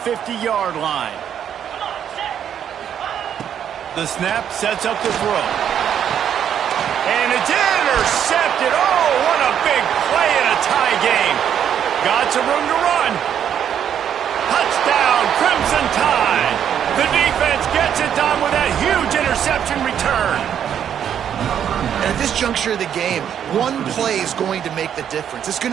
line. The snap sets up the throw. And it's intercepted. Oh, what a big play in a tie game. Got some room to run. Touchdown, Crimson Tide. The defense gets it done with that huge interception return. And at this juncture of the game, one play is going to make the difference. It's going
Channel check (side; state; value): left; quieter; 9.1 dB